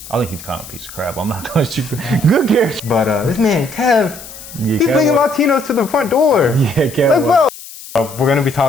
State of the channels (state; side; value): noise; left; hiss, 15 dB below the sound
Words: think he's kind of a piece of crap. I'm not going to good character. But this man, Kev, he's bringing Latinos to the front door. Yeah, Kev. Like, bro. We're going to be